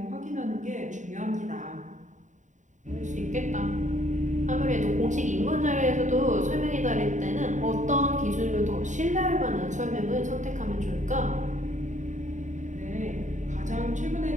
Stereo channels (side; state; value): left; late; 0.36 ms